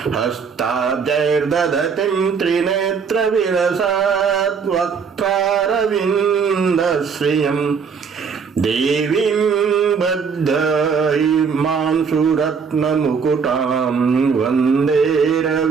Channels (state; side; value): quieter; left; 5.9 dB